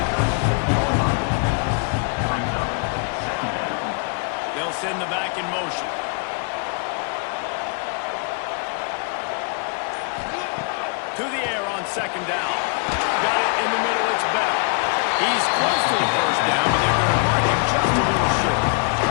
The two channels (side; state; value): right; quieter; 39.1 dB